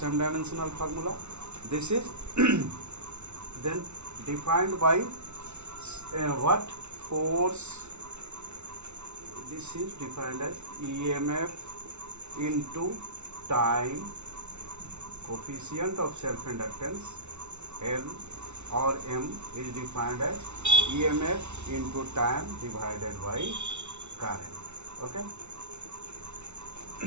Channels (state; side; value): late; left; 0.82 ms